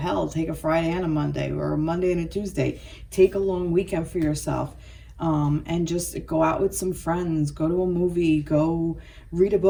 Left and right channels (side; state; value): both; identical; correlation 1.00